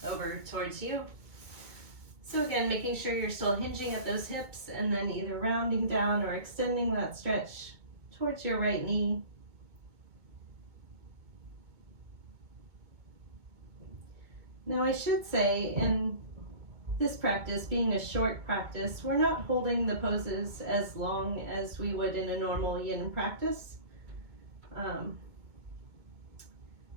over towards you. So again, making sure you're still hinging at those hips and then either rounding down or extending that stretch towards your right knee. Now I should say, in this practice, being a short practice, we're not holding the poses as long as we would in a normal yin practice.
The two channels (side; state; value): left; late; 2.2 ms